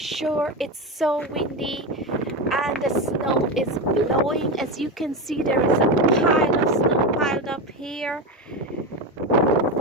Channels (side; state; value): both; normal; correlation 0.17